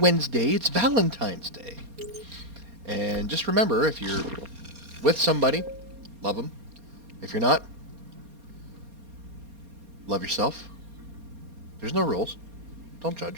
It's Valentine's Day. And just remember, if you're with somebody, love them. If you're not, love yourself. There's no rules. Don't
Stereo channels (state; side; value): late; left; 4.3 ms